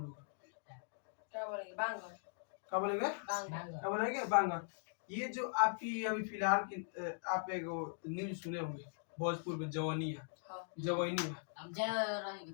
लोग, क्या बोलेंगे, बांगर। क्या बोलेंगे, क्या बोलेंगे, बांगर। ये जो आपकी अभी फिलहाल की आप एक न्यूज सुने होंगे भोजपुर में जवानिया,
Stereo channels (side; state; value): right; silent; digital silence